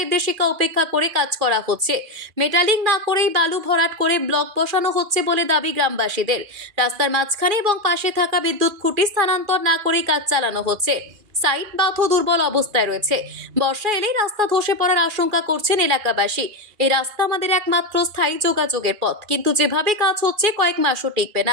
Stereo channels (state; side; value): late; left; 2.4 ms